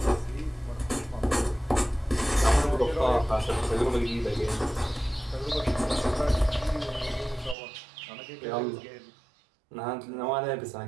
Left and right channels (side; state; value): left; drops out; at 7.6 s